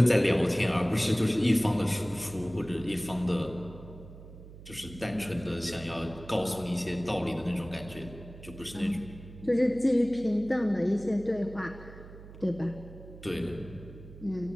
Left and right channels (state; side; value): noise; right; hum, 16 dB below the sound